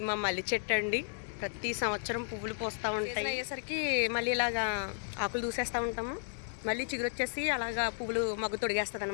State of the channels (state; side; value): silent; right; digital silence